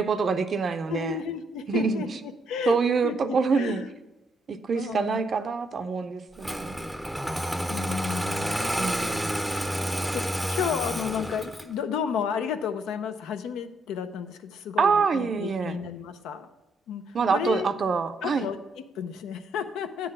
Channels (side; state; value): both; normal; correlation 0.74